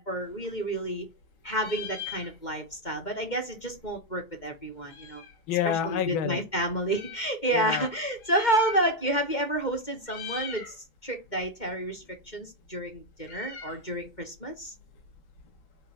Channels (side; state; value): right; late; 2.1 ms